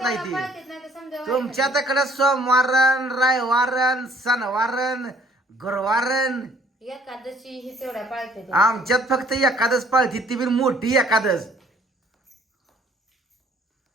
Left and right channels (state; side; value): normal; both; correlation 0.59